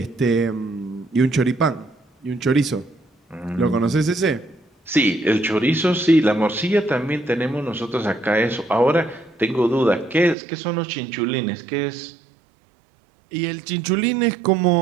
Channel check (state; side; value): drops out; left; at 10.4 s